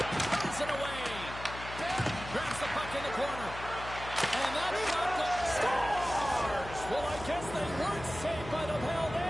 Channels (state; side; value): noise; left; hum, 11 dB below the sound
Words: Turns it away. Grabs the puck in the corner. And that shot goes. Scores! Well, I guess they weren't saved by the bell